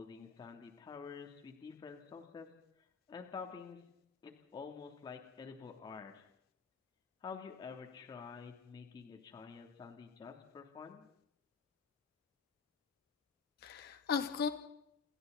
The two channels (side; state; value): right; quieter; 5.7 dB